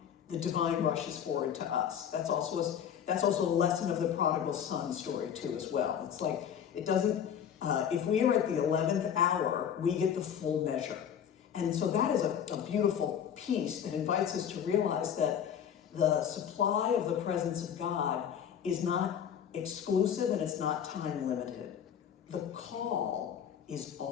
rushes forward to us. That's also a lesson of the prodigal son story too as well. It's like, it doesn't, if we are at the 11th hour, we get the full measure. And so that is a beautiful piece that invites us to realize that the supply of the presence of God is not exclusive and it's not time limited. The call is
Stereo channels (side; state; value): right; quieter; 8.7 dB